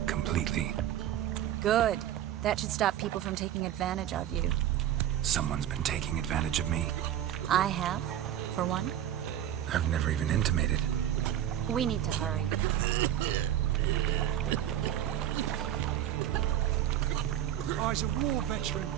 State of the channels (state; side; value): quieter; left; 11.4 dB